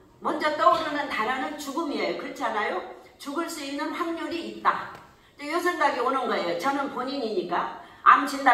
먼저 떠오르는 단어는 죽음이에요. 그렇지 않아요? 죽을 수 있는 확률이 있다. 이 생각이 오는 거예요. 저는 본인이니까 암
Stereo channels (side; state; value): both; identical; correlation 1.00